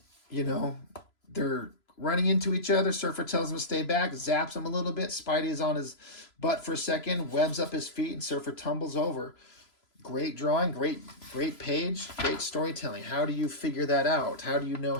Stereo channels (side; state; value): right; late; 3.0 ms